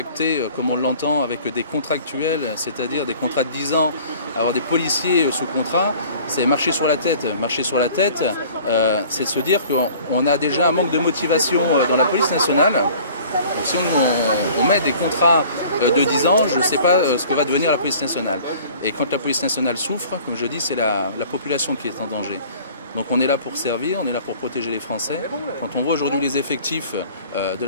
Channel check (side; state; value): both; inverted; correlation -0.48